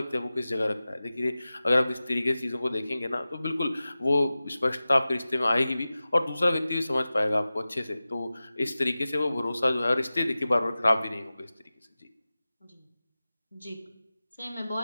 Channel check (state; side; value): inverted; both; correlation -0.96